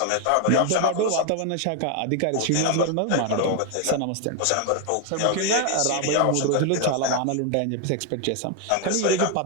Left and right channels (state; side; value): different; both; correlation 0.01